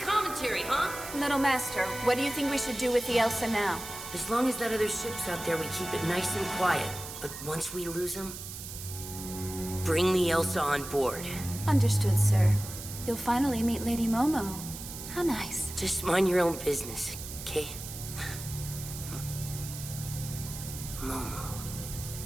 commentary, huh? Little master, what do you think we should do with the Elsa now? As long as that other ship's out there, we keep it nice and quiet. But once we lose them, bring the Elsa on board. Understood, sir. You'll finally meet Lady Momo. How nice. Just mind your own business, okay? Momo.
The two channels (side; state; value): right; noise; hiss, 10 dB below the sound